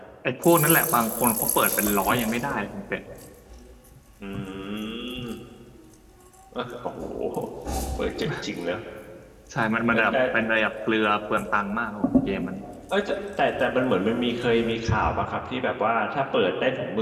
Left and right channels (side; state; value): both; identical; correlation 1.00